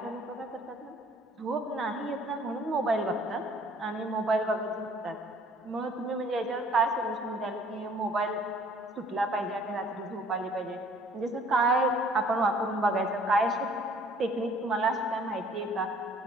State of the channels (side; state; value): both; normal; correlation 0.56